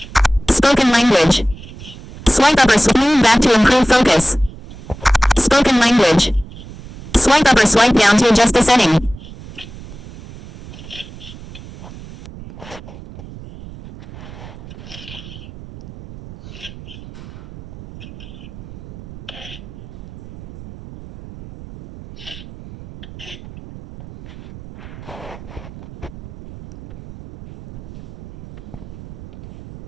Spoken language. Swipe up or command back to improve focus. Spoken language. Swipe up or swipe down to adjust the setting.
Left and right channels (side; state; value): right; noise; rumble, 16 dB below the sound